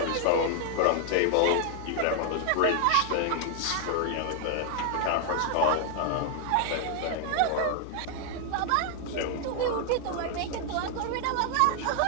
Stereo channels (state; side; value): different; both; correlation 0.00